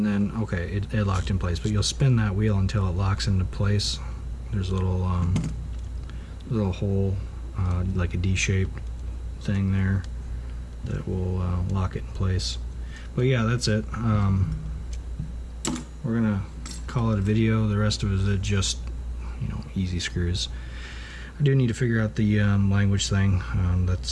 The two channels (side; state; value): both; identical; correlation 1.00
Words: then okay, it locked in place. But you'll spin that wheel until it locks into place. There's a little hole, like a D-shaped thing there, that will lock it in place. But yeah, that's it. We're gonna call it a video. The rest of it is just, you know, easy screws. I do need to figure out the language thing.